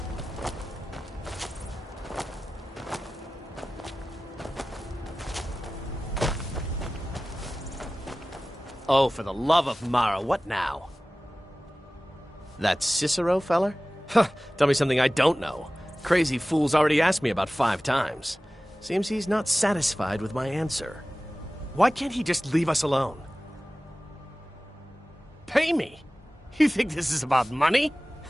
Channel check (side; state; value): both; normal; correlation 0.97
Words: Oh, for the love of Mara, what now? That Cicero feller? Huh, tell me something I don't know. Crazy fool's already asked me about 5 times. Seems he's not satisfied with my answer. Why can't he just leave us alone? Pay me? You think this is about money?